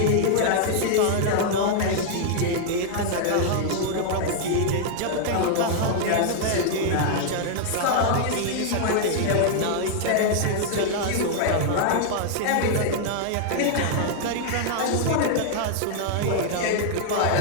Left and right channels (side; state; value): both; different; correlation -0.01